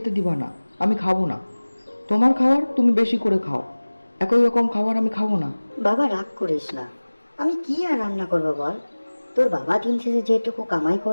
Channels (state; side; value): inverted; both; correlation -1.00